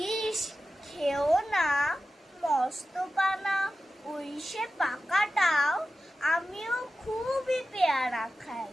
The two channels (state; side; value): normal; both; correlation 0.93